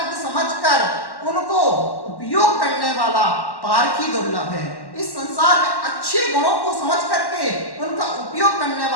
समझकर उनको उपयोग करने वाला पारखी दुर्लभ है। इस संसार में अच्छे गुणों को समझ करके उनका उपयोग करने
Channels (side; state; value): right; late; 1.1 ms